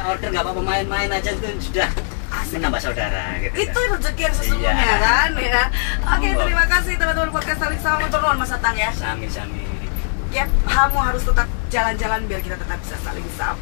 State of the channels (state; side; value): silent; right; digital silence